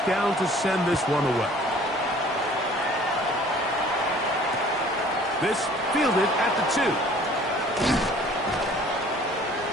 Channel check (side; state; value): both; normal; correlation 0.52